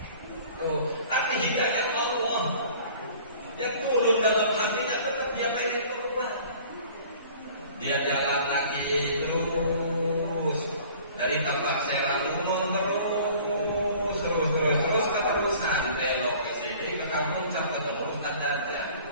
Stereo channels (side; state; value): both; inverted; correlation -0.49